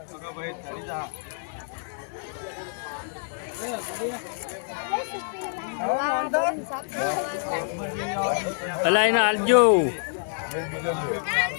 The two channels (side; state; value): right; silent; 60 dB below the other